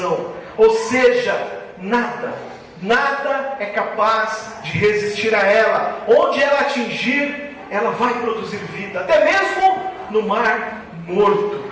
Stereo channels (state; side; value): identical; both; correlation 1.00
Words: Ou seja, nada é capaz de resistir a ela. Onde ela atingir, ela vai produzir vida, até mesmo no Mar Morto.